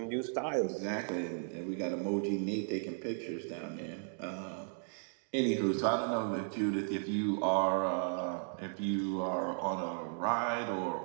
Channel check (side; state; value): left; silent; digital silence